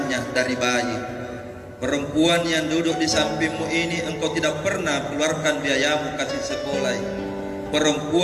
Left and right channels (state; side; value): identical; both; correlation 1.00